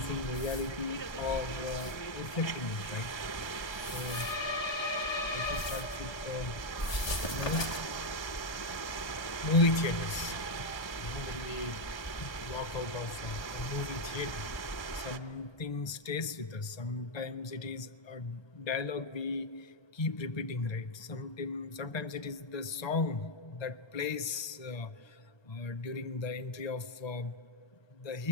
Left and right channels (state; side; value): late; right; 1.2 ms